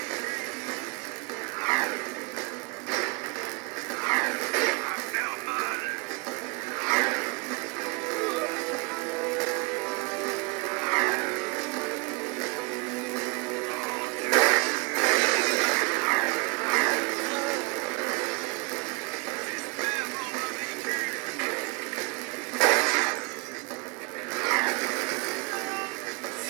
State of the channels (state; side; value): quieter; left; 29.8 dB